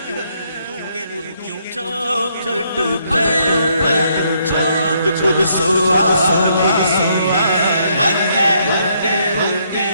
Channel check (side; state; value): both; inverted; correlation -0.72